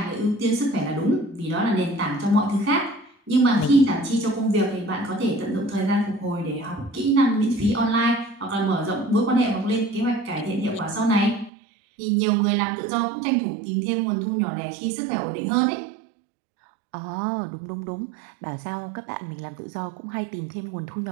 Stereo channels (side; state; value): left; drops out; at 11.5 s